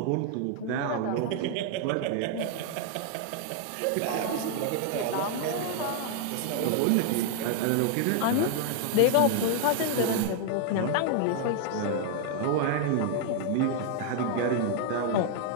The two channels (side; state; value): both; different; correlation 0.00